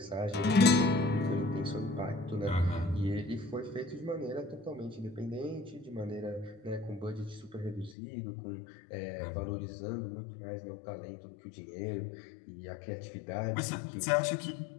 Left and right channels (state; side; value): drops out; right; at 8.0 s